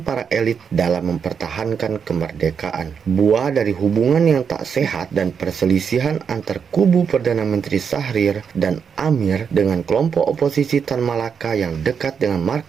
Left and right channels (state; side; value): quieter; left; 6.7 dB